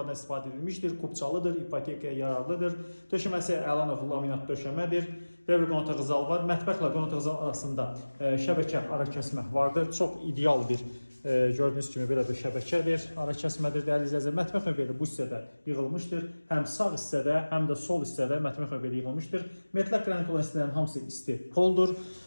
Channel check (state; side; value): inverted; both; correlation -1.00